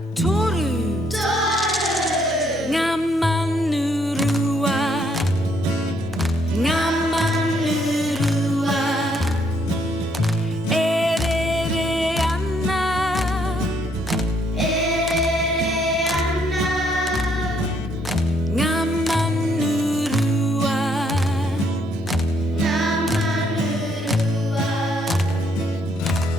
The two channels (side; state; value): both; normal; correlation 0.70